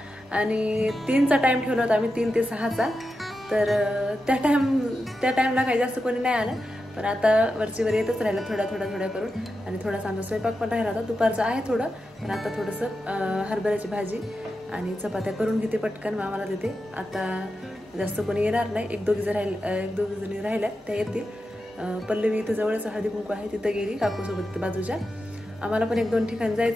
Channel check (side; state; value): both; normal; correlation 0.89